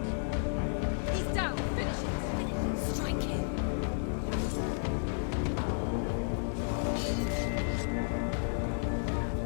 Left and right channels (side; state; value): right; silent; 56 dB below the other